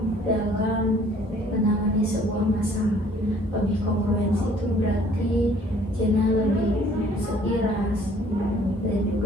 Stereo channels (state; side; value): normal; both; correlation 0.57